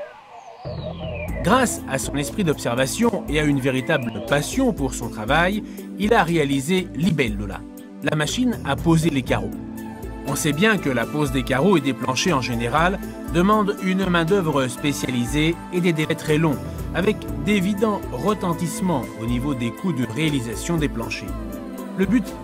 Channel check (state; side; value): identical; both; correlation 1.00